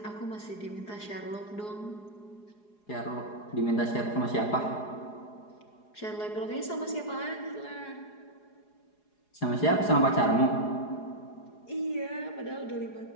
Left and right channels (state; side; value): late; right; 4.8 ms